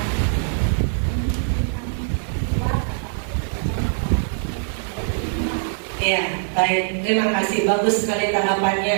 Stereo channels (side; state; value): left; silent; digital silence